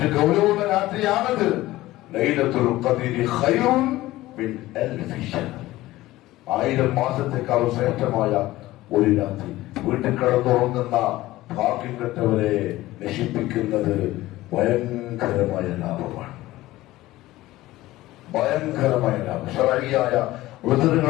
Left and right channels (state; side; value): quieter; right; 17.1 dB